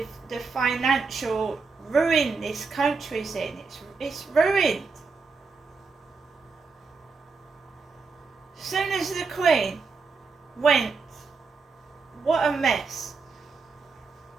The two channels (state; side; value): quieter; left; 4.6 dB